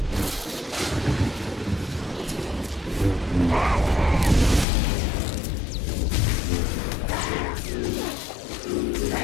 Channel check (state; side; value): drops out; right; at 4.7 s